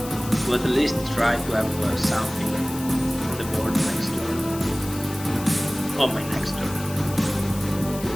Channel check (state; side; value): noise; left; hiss, 13 dB below the sound